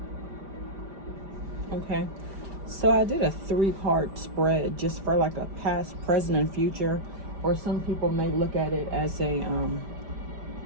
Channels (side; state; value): left; late; 5.0 ms